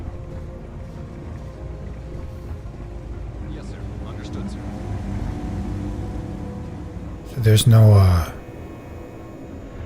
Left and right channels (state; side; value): identical; both; correlation 1.00